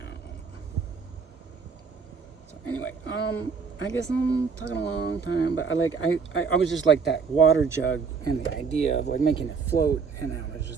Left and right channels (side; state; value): left; quieter; 5.5 dB